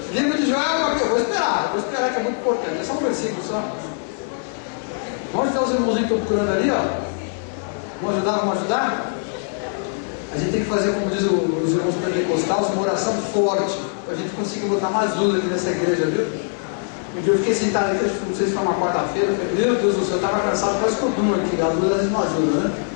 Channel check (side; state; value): right; silent; 64 dB below the other